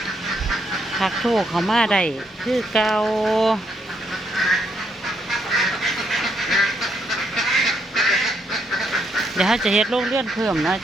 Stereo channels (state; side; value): normal; both; correlation 0.75